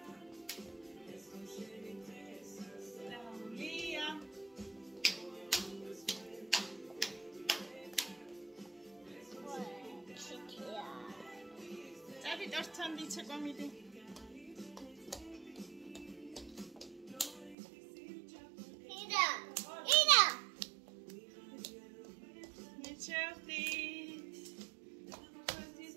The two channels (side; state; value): left; drops out; at 17.6 s